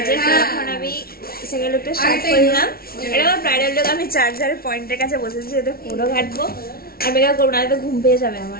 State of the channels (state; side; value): late; right; 0.44 ms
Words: তো এখন আমি সেকেন্ড লুকটা স্টার্ট করলাম। এটা আমার ব্রাইডাল লুক। আমি চার্জারের পয়েন্টের কাছে বসেছি, যাতে ফোনও ঘাটবো আর মেকআপ করবো না, তো ঘুম পেয়ে যাবে